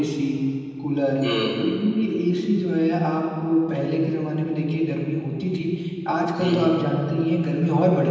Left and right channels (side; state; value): both; identical; correlation 1.00